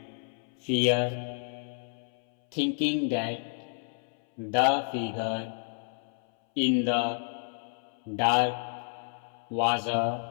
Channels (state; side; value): silent; right; 58 dB below the other